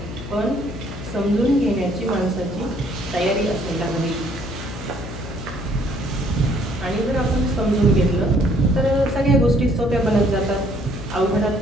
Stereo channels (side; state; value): left; noise; hum, 10 dB below the sound